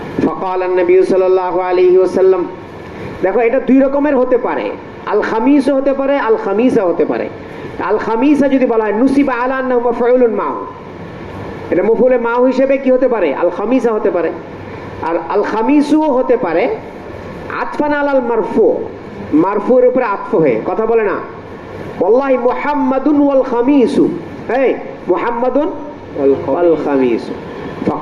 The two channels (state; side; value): identical; both; correlation 1.00